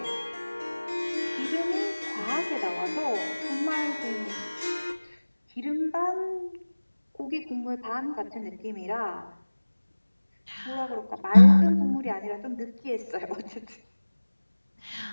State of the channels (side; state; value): both; inverted; correlation -1.00